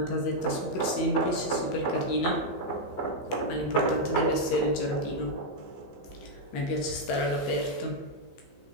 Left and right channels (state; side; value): late; right; 15 ms